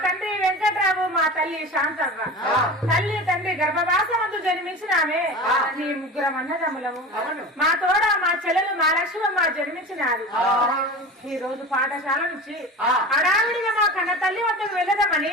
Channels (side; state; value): both; normal; correlation 0.32